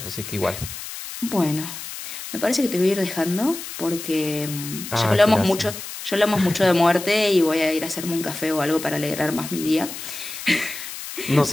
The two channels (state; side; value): noise; left; hiss, 10 dB below the sound